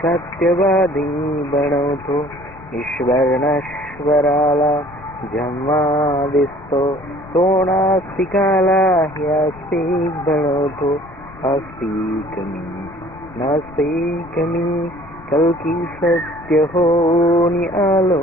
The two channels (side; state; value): left; noise; rumble, 20 dB below the sound